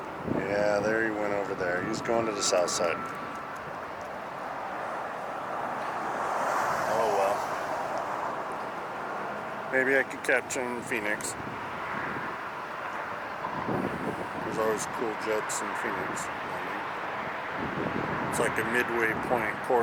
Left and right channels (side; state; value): both; identical; correlation 1.00